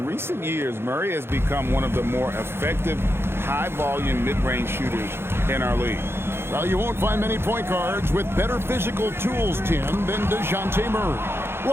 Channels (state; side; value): late; left; 0.11 ms